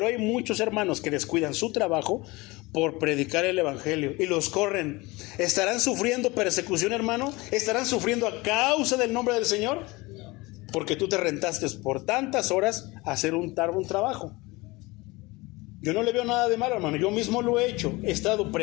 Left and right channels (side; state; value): right; quieter; 22.9 dB